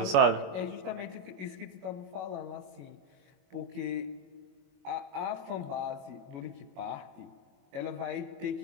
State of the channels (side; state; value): left; late; 21 ms